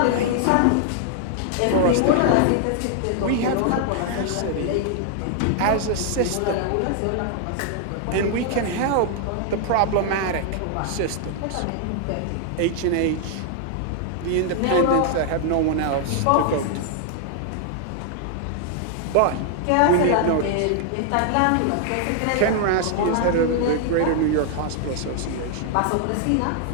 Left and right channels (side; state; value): both; different; correlation 0.00